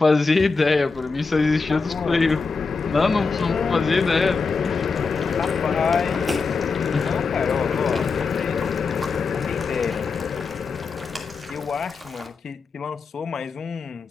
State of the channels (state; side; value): quieter; right; 4.6 dB